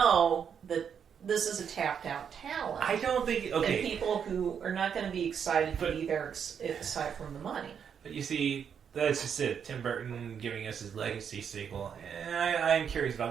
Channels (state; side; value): quieter; left; 7.6 dB